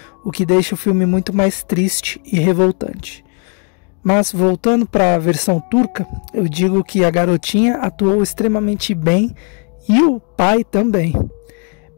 o que deixa o filme muito mais triste e revoltante. Mas, voltando para a versão turca, eu digo que a garotinha atuou extremamente bem e o pai também.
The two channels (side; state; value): right; quieter; 38.1 dB